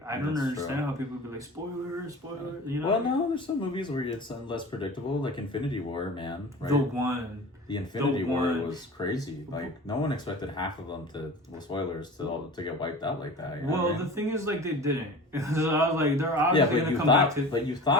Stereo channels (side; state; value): both; normal; correlation 0.37